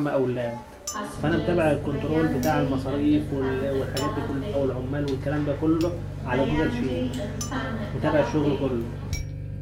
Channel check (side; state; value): both; identical; correlation 1.00